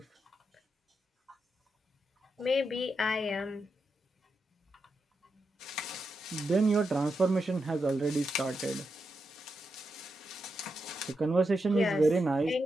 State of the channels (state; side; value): normal; both; correlation 0.86